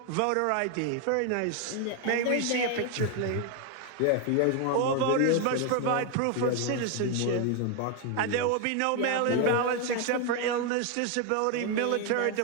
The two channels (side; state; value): both; different; correlation 0.01